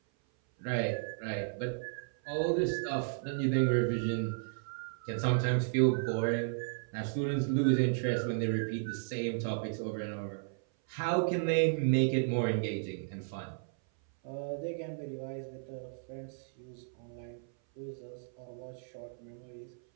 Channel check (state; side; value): silent; left; 55 dB below the other